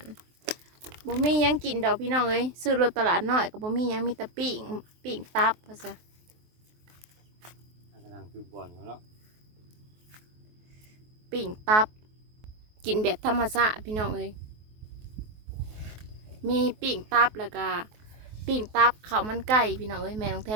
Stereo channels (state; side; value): late; left; 23 ms